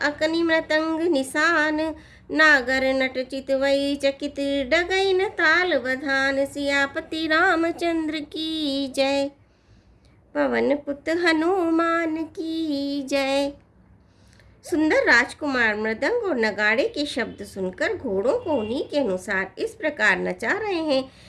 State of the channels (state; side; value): identical; both; correlation 1.00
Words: अकनि मृतंग निशान, नागर नट चितवई चकित डगई न ताल बधान। सियापति रामचंद्र की जय, पवन पुत हनुमान की जय। सुंदर राजकुमार मृदंग और नगाड़े के शब्द सुनकर घोड़ों को उन्हीं के अनुसार इस प्रकार नचा रहे हैं